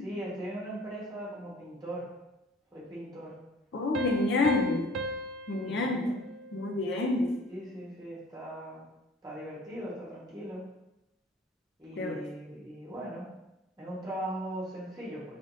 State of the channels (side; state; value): both; normal; correlation 0.49